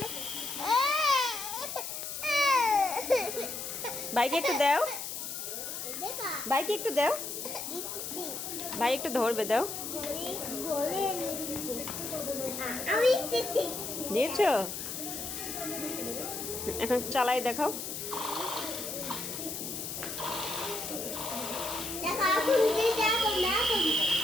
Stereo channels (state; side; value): noise; left; hiss, 6 dB below the sound